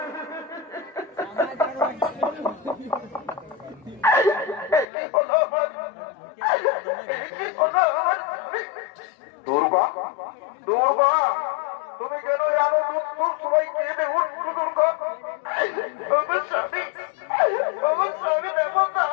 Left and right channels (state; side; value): drops out; right; at 4.9 s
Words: দুর্গা দুর্গা তুমি কেন জানো দুধ সবাই কেঁদে উঠছো দুর্গা? আমার স্বামী দেখো